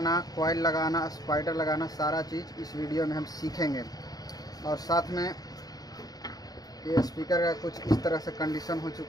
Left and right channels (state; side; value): late; right; 0.18 ms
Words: कॉइल लगाना, स्पाइडर लगाना, सारा चीज़ इस वीडियो में हम सीखेंगे। और साथ में ये स्पीकर का कुछ इस तरह से कंडीशन हो